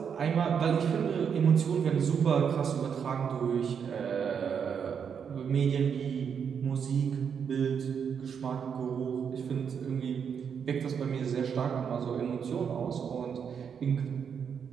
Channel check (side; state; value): left; quieter; 7.2 dB